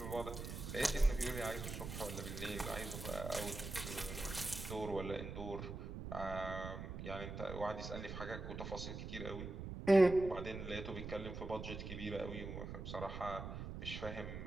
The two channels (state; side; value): noise; right; rumble, 7 dB below the sound